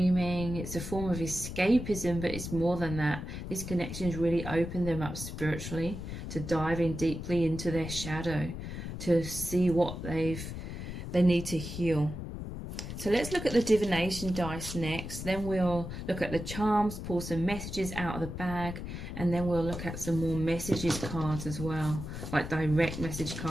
It's a form of escapism, but it's more than that. This connection has really opened them up spiritually to dive in deeply into their shadow, to see what they need to heal. So let's look at the divination dice next. Then we'll look at the charms, pull some messages out of the bag, and then we'll look at some more messages cards as well, like direct message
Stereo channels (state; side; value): noise; left; rumble, 7 dB below the sound